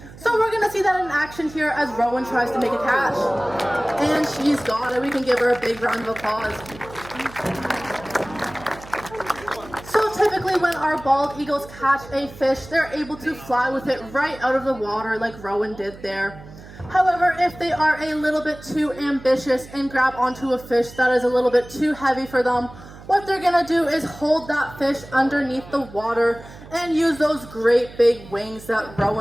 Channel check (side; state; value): right; noise; hum, 18 dB below the sound